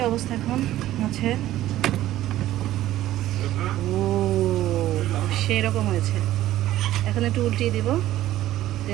অবস্থা এখন মাছের। ও সেই রকম হয়েছে। এখন একটু উল্টিয়ে দিব,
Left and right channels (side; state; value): left; quieter; 14.2 dB